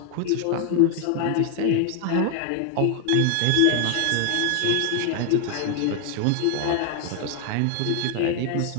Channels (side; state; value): both; different; correlation 0.01